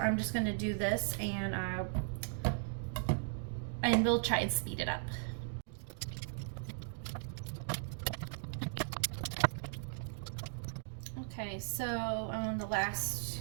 I'm just gonna do this and we'll try and speed it up. Okay, so on the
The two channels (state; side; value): silent; left; digital silence